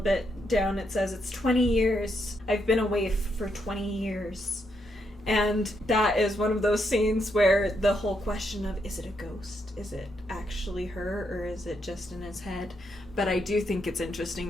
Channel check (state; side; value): normal; both; correlation 0.79